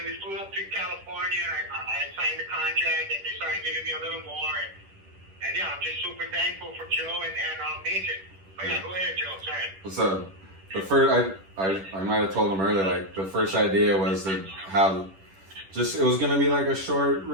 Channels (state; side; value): late; left; 10 ms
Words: we flew up to California, and I signed the contract, and they started giving me a little more, and yeah, I'm just super thankful for Joe and Mason. But yeah, go ahead, Joe. Sorry. So the first, I might have told him earlier, like the first idea was to have, just it was gonna be like a short